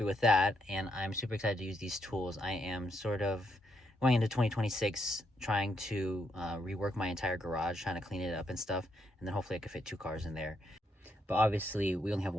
with that, and I'm super excited to use these tools. I am sort of going into 2026 trying to rework my entire garage, trying to clean it up and stuff, and then hopefully I can fit 2 cars in there. But obviously, we only have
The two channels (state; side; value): normal; both; correlation 0.77